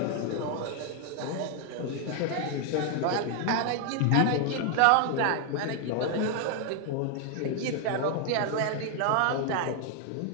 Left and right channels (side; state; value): both; different; correlation 0.00